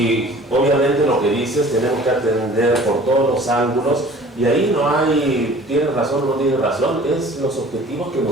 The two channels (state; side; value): normal; both; correlation 0.47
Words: obviamente lo que dices tenemos que atender por todos los ángulos, y ahí no hay, tiene razón o no tiene razón, es los objetivos que